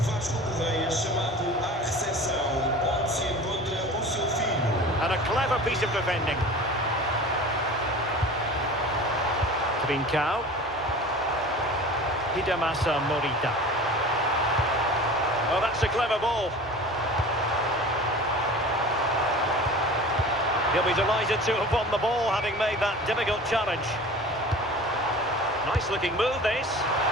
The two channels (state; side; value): normal; both; correlation 0.38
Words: Correia chamado à recepção, onde se encontra o seu filho. And a clever piece of defending. Trincao. Hidemasa Morita. Oh, that's a clever ball. He'll be delighted to have won the ball, having made that difficult challenge. Nice looking move, this.